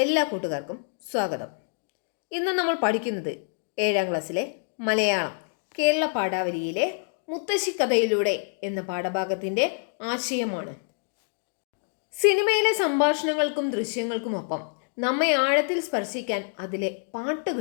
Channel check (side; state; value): right; silent; 59 dB below the other